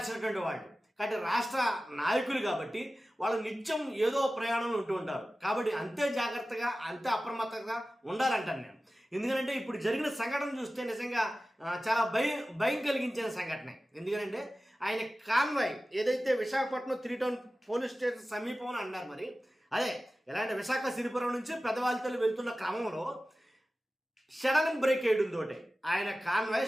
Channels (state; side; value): normal; both; correlation 0.96